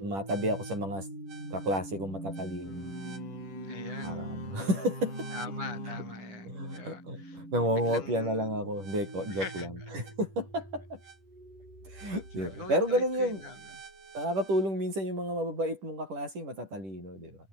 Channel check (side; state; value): left; late; 10 ms